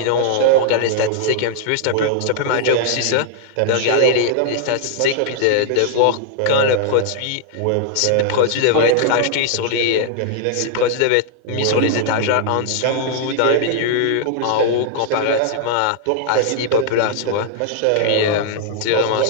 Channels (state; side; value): different; both; correlation -0.01